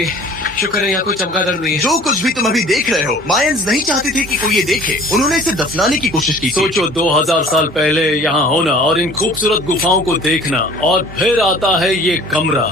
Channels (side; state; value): both; normal; correlation 0.47